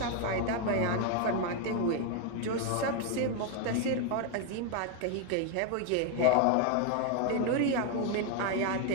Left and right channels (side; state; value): both; different; correlation 0.01